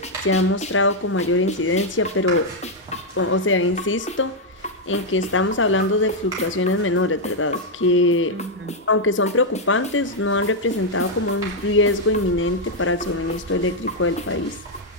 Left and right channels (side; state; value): both; normal; correlation -0.01